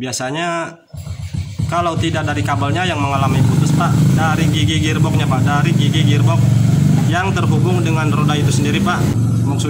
kalau tidak dari kabelnya yang mengalami putus Pak, dari gigi gearboxnya Pak, dari gigi gearbox yang terhubung dengan roda itu sendiri Pak.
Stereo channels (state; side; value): identical; both; correlation 1.00